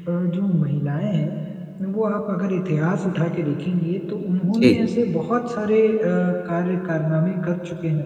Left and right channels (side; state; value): both; identical; correlation 1.00